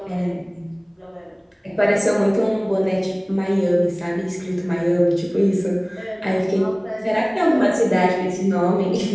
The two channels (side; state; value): both; identical; correlation 1.00